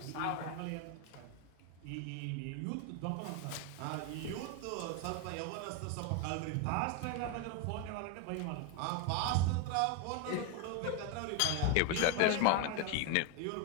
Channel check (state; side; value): different; both; correlation 0.01